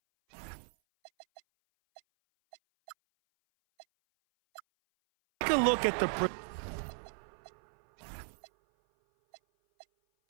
a look at the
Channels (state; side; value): silent; left; 54 dB below the other